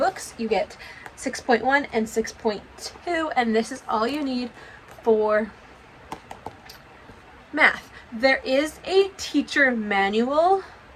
You get 6.1 and 6.2, and this is all you need for math. There is a teacher manual,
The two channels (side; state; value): both; identical; correlation 1.00